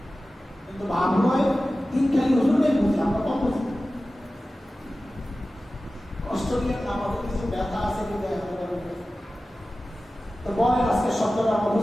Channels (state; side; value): normal; both; correlation 0.96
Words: কিন্তু ভাব হয় দিন খালি হুজুর নেই বুঝি, আমরা কম বুঝি। কষ্ট নিয়ে আমাদের কিছু ব্যথা আছে কিন্তু তো বলে আজকে শব্দটা